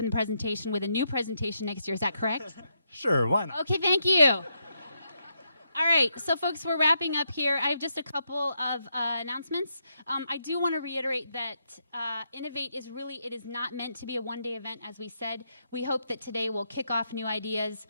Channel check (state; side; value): inverted; both; correlation -0.80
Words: the presentation with a new presentation next year. Is that correct? Sure, why not? Okay, thank you. All right, so folks, we're wrapping up here. I have just a couple of announcements. I do want to reiterate that Innovate is really, it is not meant to be a one-day event, as we said. We hope that today will kick off new ideas,